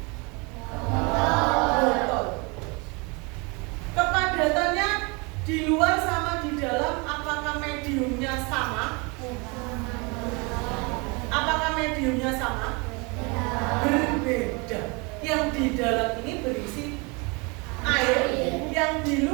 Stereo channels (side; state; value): left; quieter; 29.4 dB